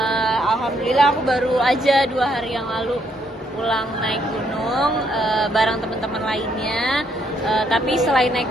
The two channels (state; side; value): normal; both; correlation 0.72